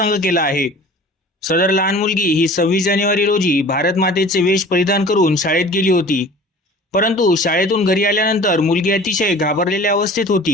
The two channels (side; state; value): both; normal; correlation 0.44